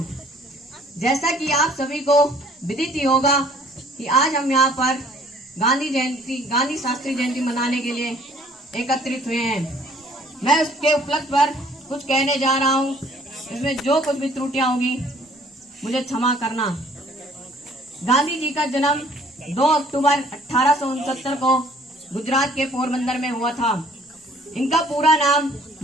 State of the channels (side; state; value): both; normal; correlation 0.57